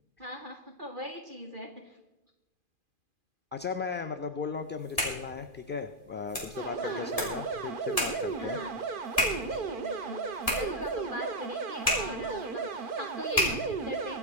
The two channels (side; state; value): left; late; 2.5 ms